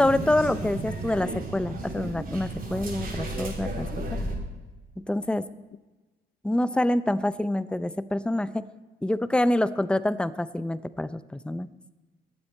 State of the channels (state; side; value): normal; both; correlation 0.93